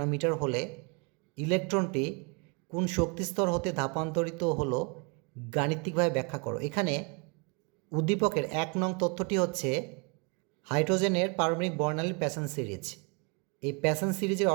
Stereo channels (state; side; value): quieter; left; 33.4 dB